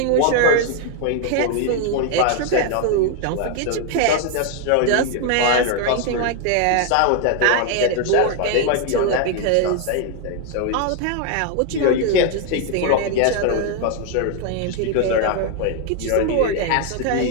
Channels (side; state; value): both; different; correlation 0.01